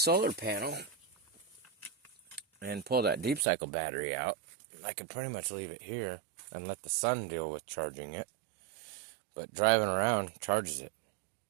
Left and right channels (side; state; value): left; drops out; at 3.5 s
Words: panel and pull that deep cycle battery out, I could pretty much leave it here and let the sun deal with charging it. But driving around charges it.